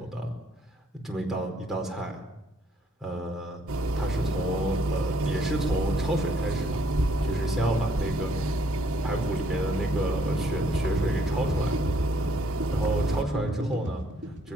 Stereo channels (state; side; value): normal; both; correlation 0.67